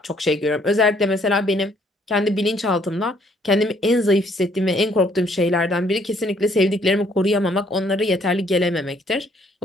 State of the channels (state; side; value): normal; both; correlation 0.65